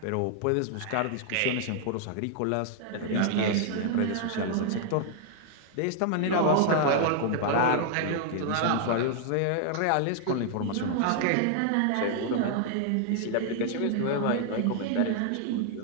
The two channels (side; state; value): both; different; correlation 0.00